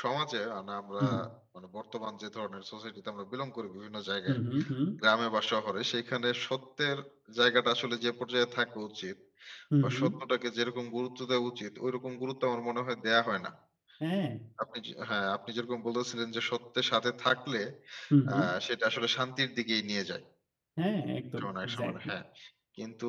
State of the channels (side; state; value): both; identical; correlation 1.00